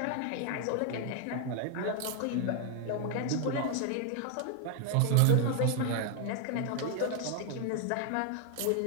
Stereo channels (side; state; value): both; different; correlation 0.00